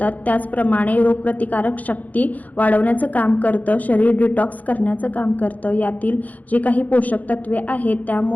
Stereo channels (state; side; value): late; right; 0.077 ms